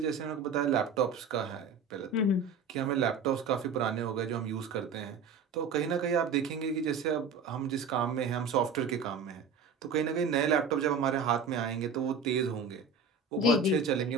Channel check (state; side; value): quieter; left; 4.8 dB